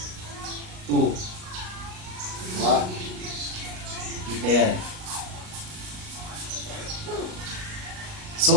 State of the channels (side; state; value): left; late; 38 ms